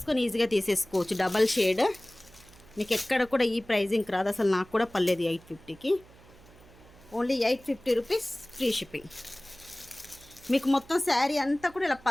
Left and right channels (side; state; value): right; noise; hum, 24 dB below the sound